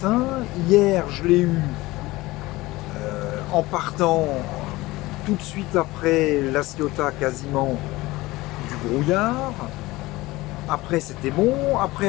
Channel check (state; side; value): quieter; right; 19.8 dB